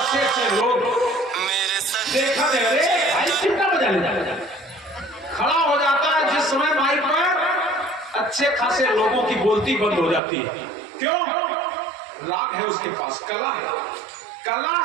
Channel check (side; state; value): left; drops out; at 10.2 s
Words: से लोग देखा दे, अरे भाई चिंता बजा ले, खड़ा हो जाता है जिस समय माइक पर अच्छे खासे लोगों की बोलती बंद हो जाती है। क्यों? राग है उसके पास, कला है, कला